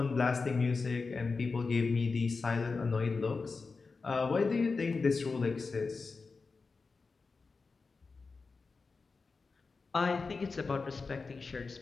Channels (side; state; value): right; quieter; 4.3 dB